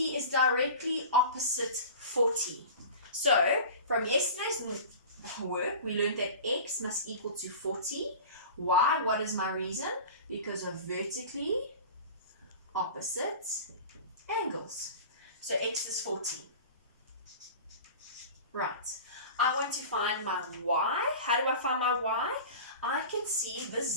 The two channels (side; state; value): both; inverted; correlation -0.36